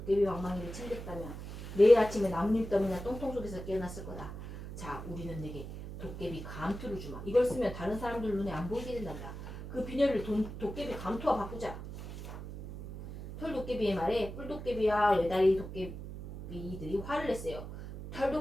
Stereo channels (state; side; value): noise; right; hum, 10 dB below the sound